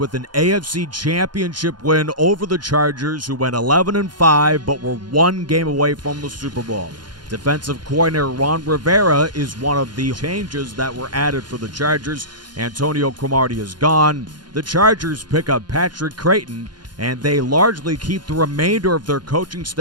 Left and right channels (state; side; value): late; left; 0.71 ms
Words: an AFC Championship win over the Chargers, who went 11-5 but were one game away from the Super Bowl. Defensive coordinator Ron Rivera is one of the changes that were added for the Chargers. Antonio Cromartie is gone. The Chargers pick up Patrick Creighton, and they largely keep the remainder of their coaching